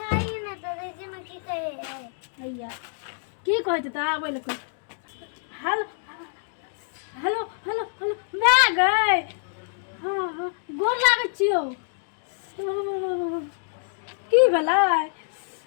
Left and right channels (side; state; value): right; silent; digital silence